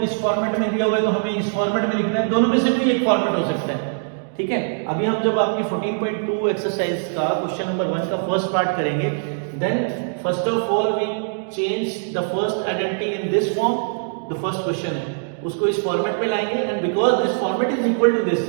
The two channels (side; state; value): left; silent; digital silence